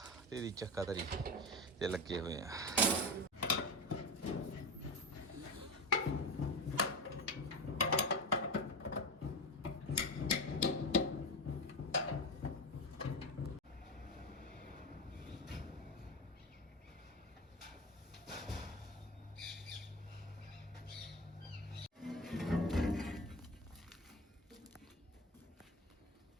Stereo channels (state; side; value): normal; both; correlation 0.21